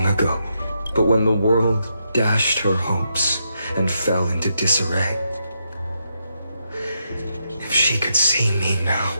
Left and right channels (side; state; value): both; inverted; correlation -0.82